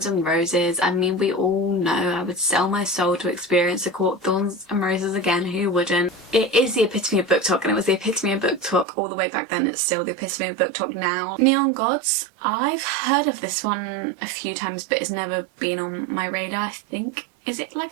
and Roses. I mean, we all know I would sell my soul to experience A Court of Thorns and Roses again. Who wouldn't? It is the epitome of BookTok, and it was the epitome of BookTok all the way back then. It's still the epitome of BookTok now. Neon Gods. I've heard of this one a few times, but it's never been on my radar. I think, is it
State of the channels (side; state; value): left; drops out; at 8.8 s